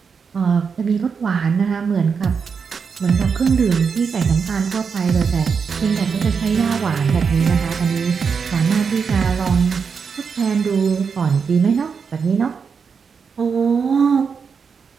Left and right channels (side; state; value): left; quieter; 5.9 dB